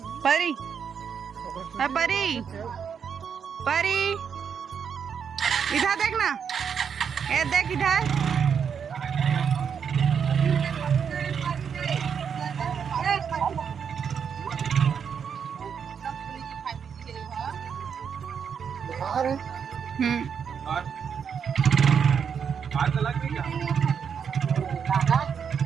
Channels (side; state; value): left; quieter; 7.1 dB